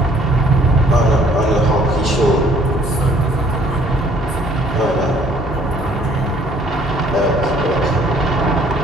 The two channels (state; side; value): normal; both; correlation 0.60